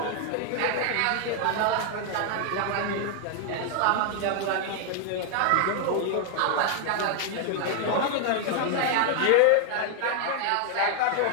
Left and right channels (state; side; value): different; both; correlation 0.00